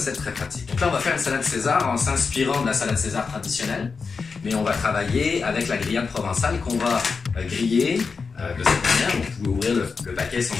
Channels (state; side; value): quieter; right; 4.9 dB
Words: très pratiques. Donc là, on va faire une salade César en s'inspirant de la salade César traditionnelle, mais on va travailler avec la grillade provençale qu'on va griller de cette manière. Donc, vous pouvez ouvrir le paquet sans